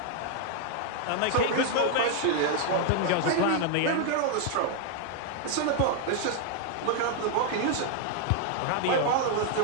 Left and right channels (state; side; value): different; both; correlation 0.00